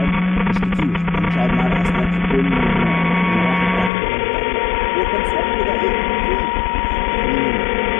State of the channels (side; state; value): right; drops out; at 3.9 s